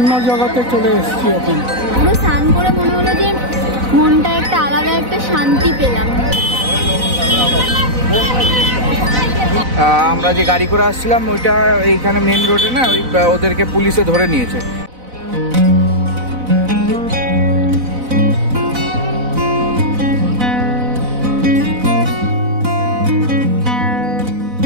জায়গাতে চলে এসেছি এখন। পুরো স্নান করে মনে হলো যে মনটা একটা আলাদা একটা শান্তি পেলাম। আমরা যে গাড়ি করে আসছিলাম ওইটা এইখানে মেন রোডে না, ওই ওদেরকে পুলিশে ধরে নিয়েছে।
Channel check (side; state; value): left; late; 4.0 ms